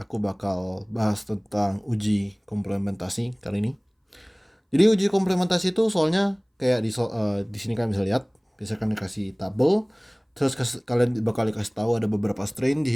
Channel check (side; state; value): both; identical; correlation 1.00